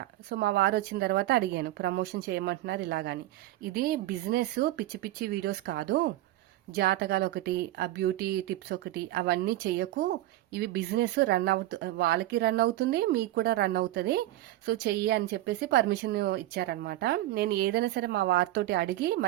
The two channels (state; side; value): quieter; left; 15.5 dB